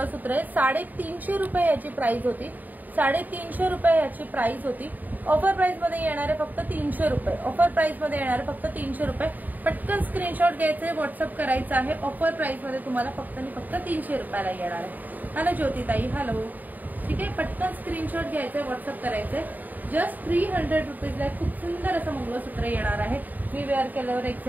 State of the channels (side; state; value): left; late; 0.084 ms